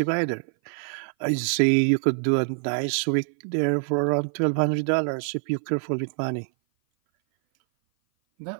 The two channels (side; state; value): left; silent; 57 dB below the other